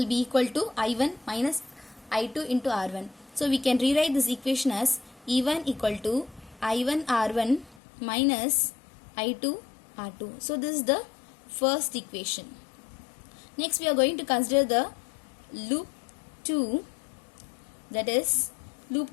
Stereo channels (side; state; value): right; drops out; at 7.8 s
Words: be equal to I1 minus I2 into R1. So we can rewrite this equation as E1 equal to I1 R1 minus I2 R2. So this is the first equation. Next we are going to consider the loop 2, that is